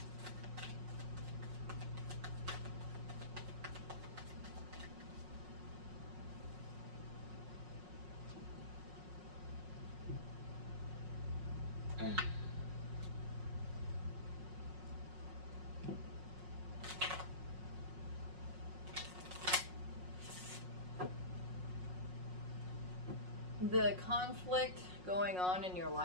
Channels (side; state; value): left; late; 5.5 ms